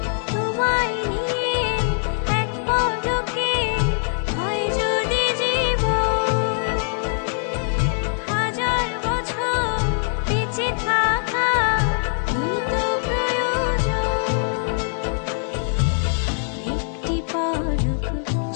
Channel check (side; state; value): right; silent; digital silence